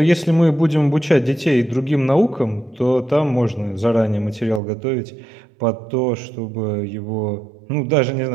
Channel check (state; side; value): drops out; left; at 4.6 s